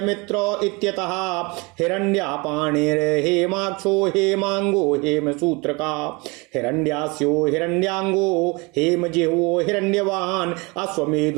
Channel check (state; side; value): quieter; left; 27.2 dB